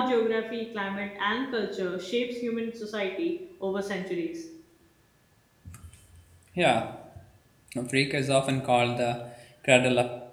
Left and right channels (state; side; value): identical; both; correlation 1.00